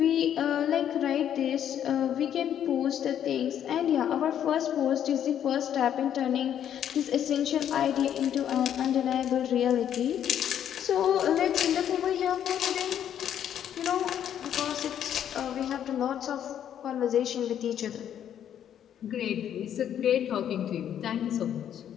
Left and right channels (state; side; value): quieter; right; 9.9 dB